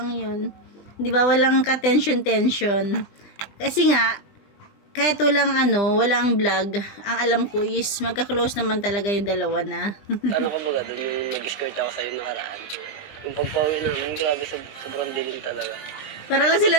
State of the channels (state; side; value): late; right; 20 ms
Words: yun. Di ba? Walang ka-tension-tension. Kasi nga, kahit walang vlog, ang alam ko is magka-close naman talaga yung dalawa na. Ano ka baga doon yung nag-skirt ako sa yung nakaraan. Yung pagpawi namin, grabe, sobrang dilim talaga. Para lang